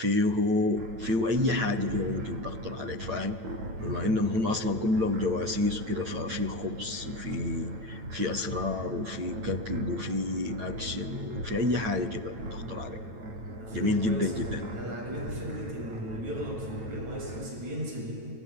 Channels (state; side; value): late; left; 9.0 ms